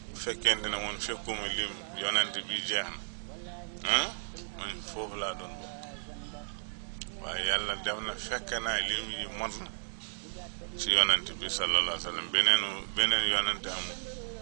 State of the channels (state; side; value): silent; left; digital silence